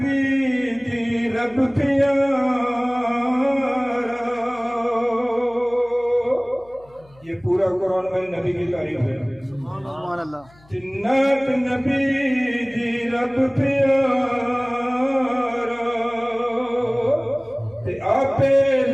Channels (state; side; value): noise; left; hum, 28 dB below the sound